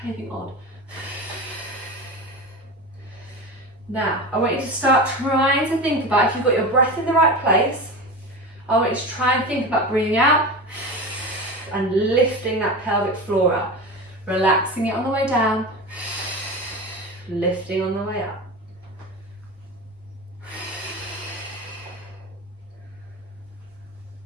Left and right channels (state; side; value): normal; both; correlation 0.27